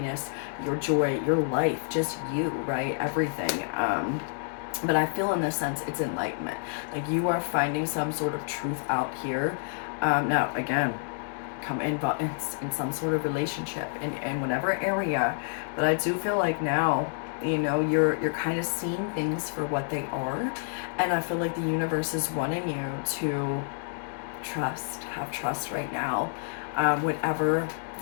your joy, your life, just you, right? Everything. But I feel in this sense it's enlightenment. Like you are finding some sort of truth out here. Now again, come in some sort of relationship in whatever area. But I do feel like now, you know, you're kind of seeing things for what they are. And I feel like the universe is wanting you to have trust right now. Whatever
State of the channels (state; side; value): silent; right; digital silence